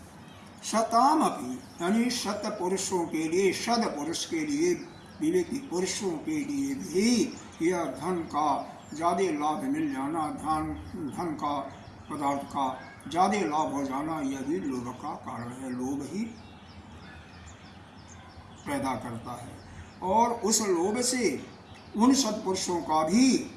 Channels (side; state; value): both; identical; correlation 1.00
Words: शताम अपि, यानी शत पुरुषों के लिए, शत पुरुष के लिए, विवेकी पुरुषों के लिए भी यह धन का ज़्यादा लाभ मिल जाना, धन का पदार्थ का ज़्यादा लाभ हो जाना, यह भी लोभ का कारण है। लोभ ही पैदा करता है, और उस लोभ से उन सत्पुरुषों का भी